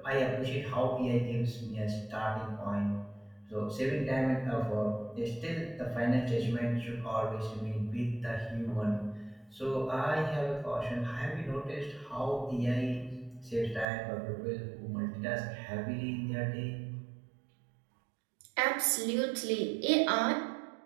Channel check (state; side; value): drops out; left; at 13.9 s